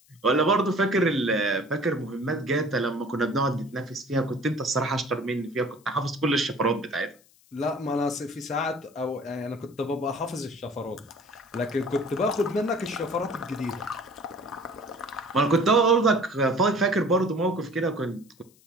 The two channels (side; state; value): left; noise; hiss, 30 dB below the sound